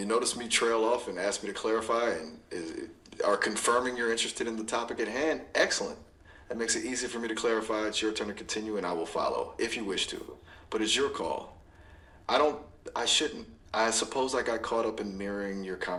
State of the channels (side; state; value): both; identical; correlation 1.00